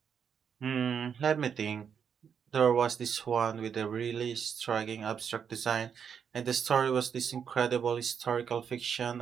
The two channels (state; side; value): quieter; left; 7.3 dB